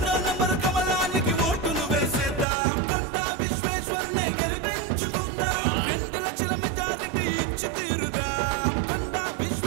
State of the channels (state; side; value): drops out; left; at 2.5 s